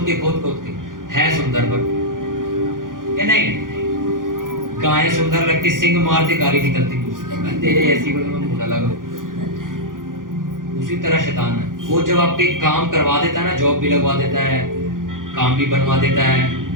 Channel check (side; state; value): left; late; 0.90 ms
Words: के। है सुंदर पर क्या नहीं? गाय सुंदर लगती, सिंग मारती गाली निकलती, तेरे ऐसी को मुंह लगा। उसी तरह शैतान है, वो जब आपके काम करवा देता है ना, जॉब भी लगवा देता है, काम भी बनवा देता